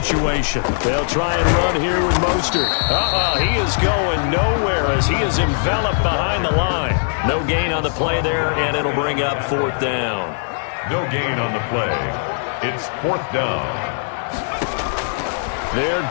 They'll try and run here with Mostert. He is going nowhere as he is enveloped behind the line. No gain on the play there, and it'll bring up 4th down. No gain on the play. It's 4th down. They're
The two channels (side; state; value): right; silent; digital silence